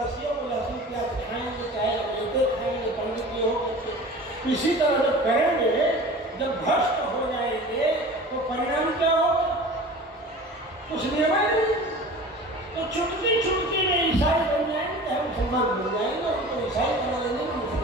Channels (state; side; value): normal; both; correlation 0.39